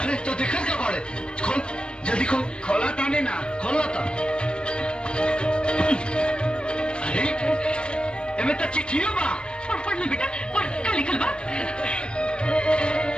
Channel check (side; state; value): right; late; 0.055 ms